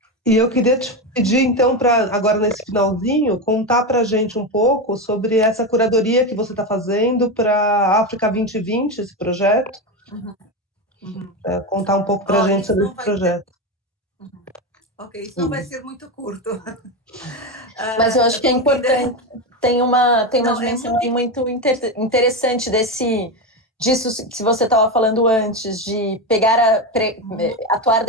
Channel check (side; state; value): both; normal; correlation 0.15